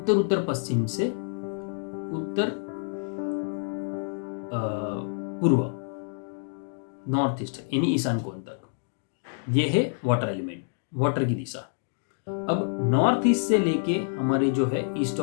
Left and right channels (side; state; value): right; silent; digital silence